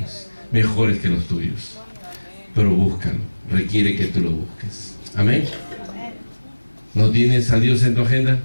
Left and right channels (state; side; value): inverted; both; correlation -1.00